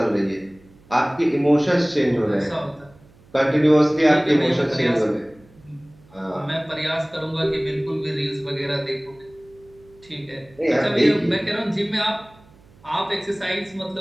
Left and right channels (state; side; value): noise; right; hum, 27 dB below the sound